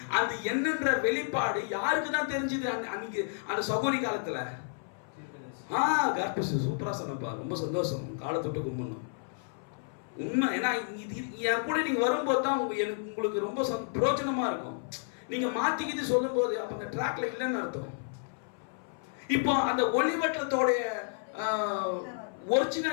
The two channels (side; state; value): right; silent; 57 dB below the other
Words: அந்த என்னன்ற வெளிப்பாடு யாருக்கு தான் தெரிஞ்சது? அன்னைக்கு அந்த சகோதரி காலத்துல. சூப்பரா சொன்னப்பா, ரொம்ப சந்தோஷம். காலத்தொட்டு கும்பிடணும் உண்மை. ஏன்னா என் கூட நீங்க வரும்போது தான் உங்களுக்கு ரொம்ப பிரயோஜனமா இருக்கும். நீங்க மாத்திக்கிட்டு சொல்லும் போது அப்ப அந்த ட்ராக்ல இல்லைன்னு அர்த்தம். இப்போ அந்த ஒளிவட்டத்தோட